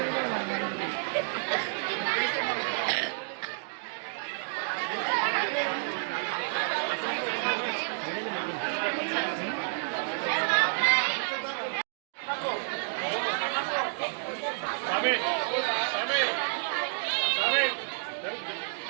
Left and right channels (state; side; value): silent; left; digital silence